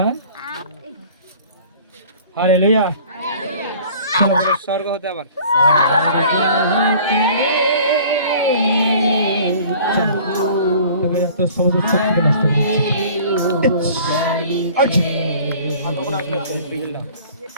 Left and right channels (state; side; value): inverted; both; correlation -0.48